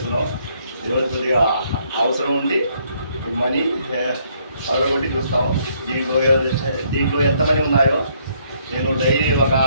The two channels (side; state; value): both; inverted; correlation -0.68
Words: ఈరోజు కొద్దిగా అవసరం ఉండి మనీ పగలగొట్టి చూస్తాం. దీంట్లో ఎంతమంది ఉన్నాయో నేను డైలీ ఒక